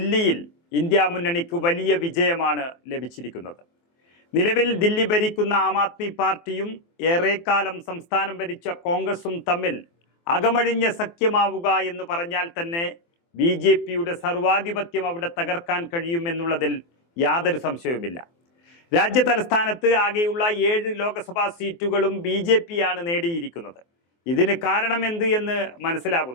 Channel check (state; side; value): late; right; 24 ms